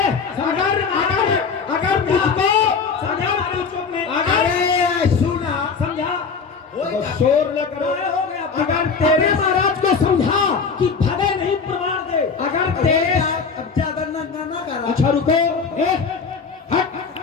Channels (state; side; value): quieter; right; 5.4 dB